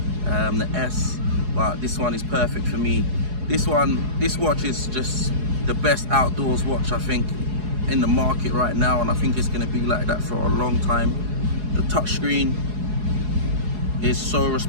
the S. But this one is perfect for me. This watch is just the best outdoors watch I think in the market right now, and I think it's going to be like that for a long time. The touchscreen is so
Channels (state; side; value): late; left; 4.8 ms